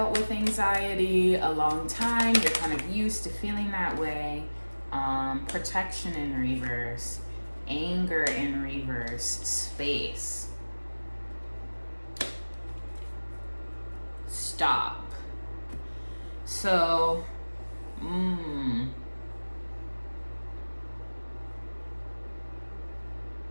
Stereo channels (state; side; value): inverted; both; correlation -1.00